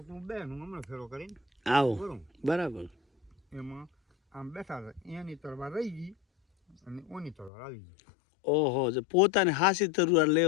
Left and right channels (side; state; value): right; drops out; at 7.5 s